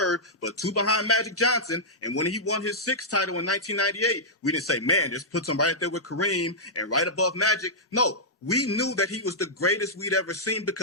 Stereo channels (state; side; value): normal; both; correlation -0.11